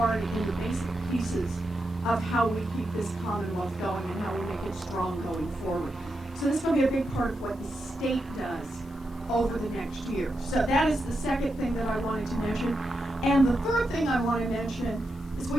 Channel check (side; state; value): both; normal; correlation 0.86